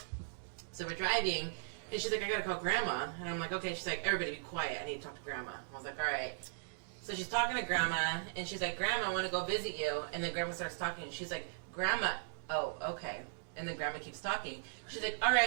So we're driving, and she's like, I gotta call Grandma, and I'm like, okay. She's like, everybody be quiet. I need to talk to Grandma. I was like, all right. So she's talking to Grandma, and she's like, Grandma, I want to go visit you. And then Grandma starts talking, and she's like, Grandma, oh, okay. And then Grandma keeps talking. She's like, all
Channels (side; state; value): left; silent; digital silence